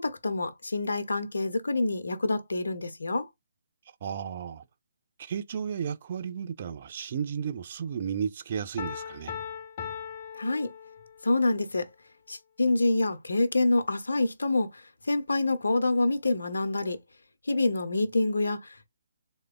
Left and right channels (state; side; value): inverted; both; correlation -0.90